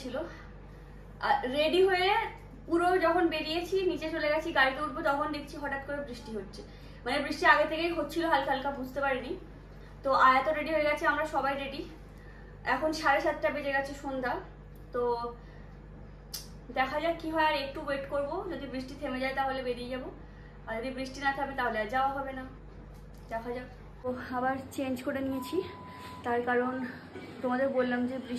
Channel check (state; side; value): identical; both; correlation 1.00